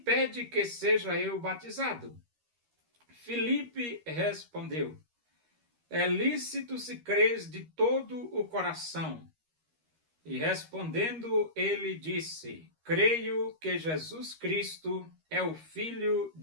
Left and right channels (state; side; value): late; left; 13 ms